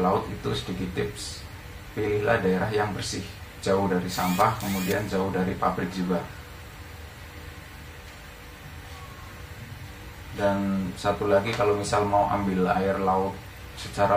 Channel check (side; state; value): both; identical; correlation 1.00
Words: itu sedikit tips, pilihlah daerah yang bersih, jauh dari sampah, kemudian jauh dari pabrik juga. Dan satu lagi, kalau misal mau ambil air laut secara